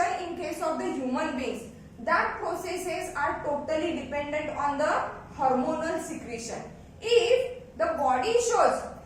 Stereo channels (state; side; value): identical; both; correlation 1.00